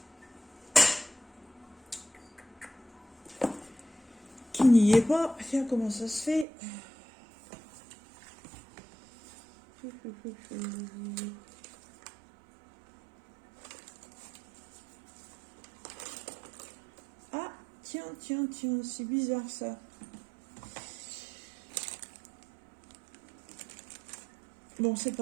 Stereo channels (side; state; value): left; drops out; at 6.5 s